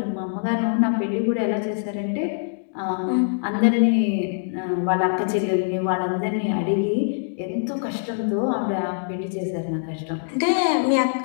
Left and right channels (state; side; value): silent; right; digital silence